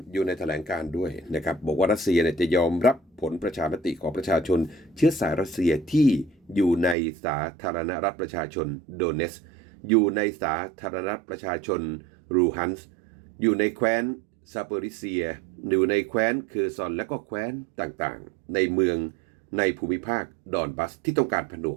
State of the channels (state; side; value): drops out; left; at 7.0 s